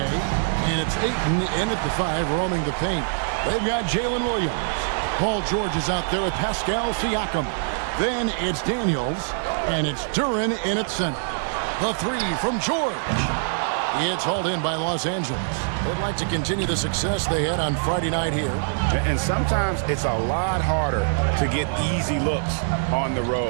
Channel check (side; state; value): left; silent; digital silence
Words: it's Ayton in at the 5, roaming the paint. They've got Jalen Williams. Paul George is out there with Pascal Siakam. Then it's Daniels, and it's Duran in at center. The 3 from George. It's hauled in by Los Angeles. They'd like to continue the success they had on Friday night here. And sometimes it's a lot harder to get easy looks on the